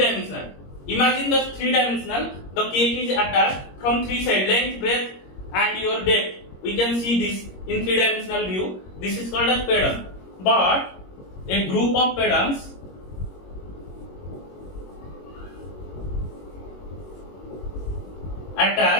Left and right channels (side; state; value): right; late; 21 ms